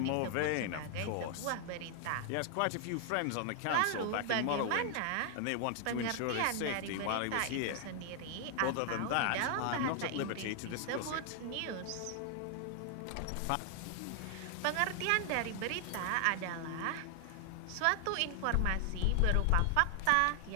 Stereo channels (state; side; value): different; both; correlation 0.00